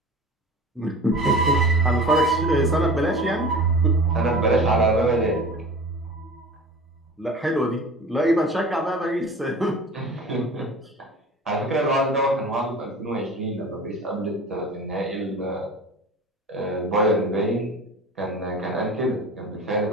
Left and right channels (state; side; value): normal; both; correlation 0.37